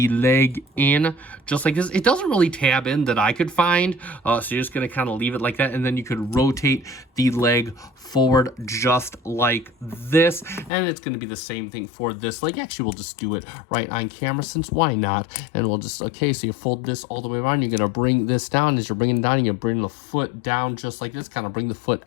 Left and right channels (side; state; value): right; drops out; at 10.7 s